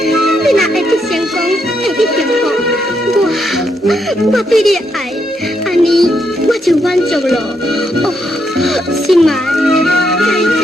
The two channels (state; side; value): normal; both; correlation 0.78